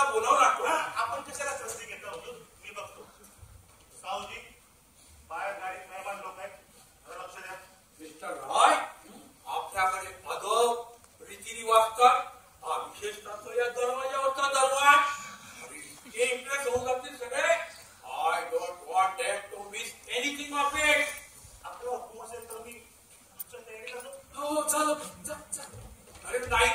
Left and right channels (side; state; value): both; identical; correlation 1.00